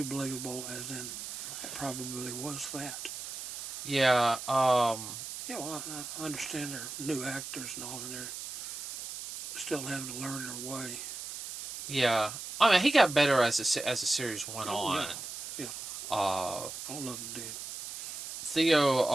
believable, as in it probably was that. Yeah. Well, I understand they're new actors and all, and they're still having to learn their way. Yeah. I mean, he got better as the series went on. Yeah. All of them did.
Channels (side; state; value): right; noise; hiss, 8 dB below the sound